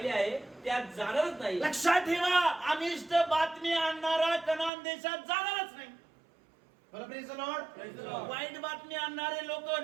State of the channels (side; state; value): left; drops out; at 4.7 s